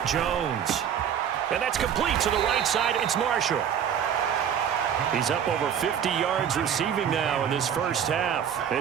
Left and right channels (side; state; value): left; quieter; 8.7 dB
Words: Jones. And that's complete to the right side. It's Marshall. He's up over 50 yards receiving now in this first half.